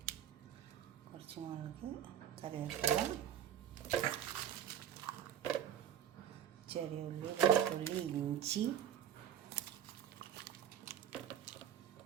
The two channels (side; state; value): left; quieter; 9.7 dB